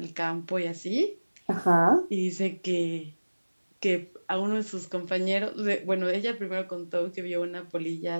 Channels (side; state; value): both; inverted; correlation -1.00